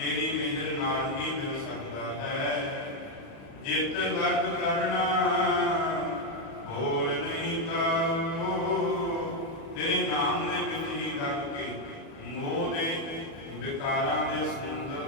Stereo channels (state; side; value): late; right; 36 ms